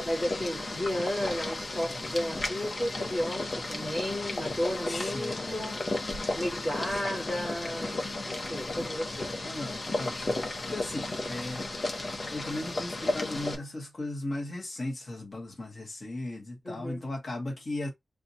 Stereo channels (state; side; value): normal; both; correlation 0.95